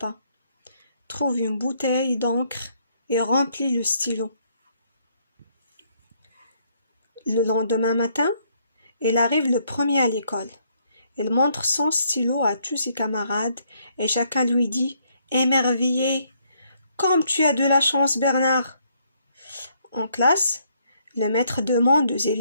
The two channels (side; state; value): both; inverted; correlation -0.70